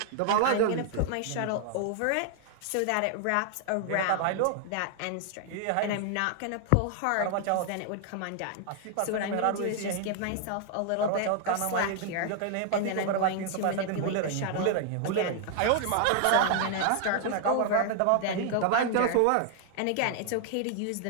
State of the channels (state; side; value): different; both; correlation 0.00